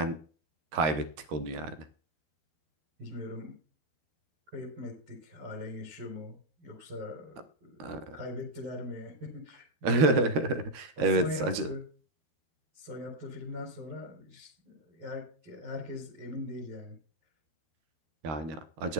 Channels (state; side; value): late; left; 13 ms